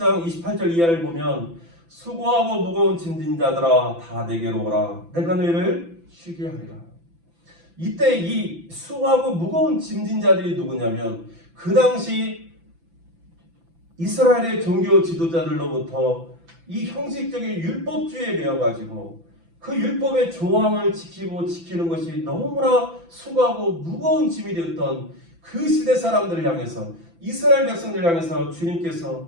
28절 이하를 보면 수고하고 무거운 짐진 자들아 다 내게로 오라 내가 너희를 쉬게 하리라. 이때 이 수고하고 무거운 짐진 자들이 누구냐면 그 당시 이스라엘의 종교 지도자들로부터 이 형식적인 율법주의에 매여가지고 그 율법의 조항을 지키고 지키는 것이 너무나 수고하고 무거운 짐이 되었던 그 시대 사람들을 향해서, 이스라엘 백성들을 향해서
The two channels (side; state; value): left; late; 6.0 ms